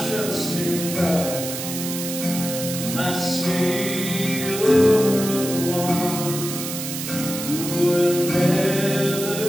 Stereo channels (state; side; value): noise; right; hiss, 6 dB below the sound